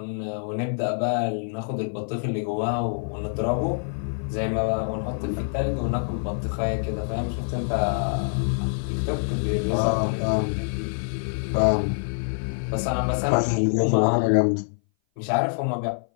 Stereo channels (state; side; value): silent; right; 58 dB below the other